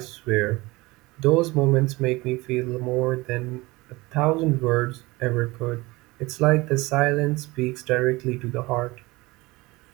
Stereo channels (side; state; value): left; quieter; 21.9 dB